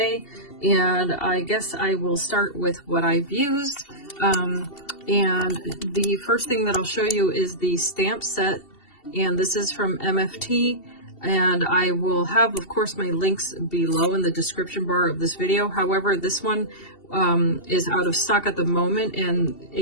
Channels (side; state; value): right; late; 2.7 ms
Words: and I guess I will start with what I've used. And the first thing that I'll show you is the stamp set, and this is from MFT, and I will have, of course, my links below in the description bar of this video. However, this one is out of stock at the moment, and